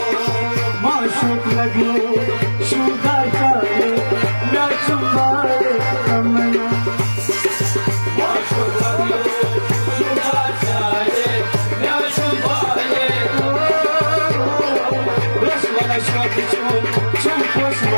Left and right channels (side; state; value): both; inverted; correlation -1.00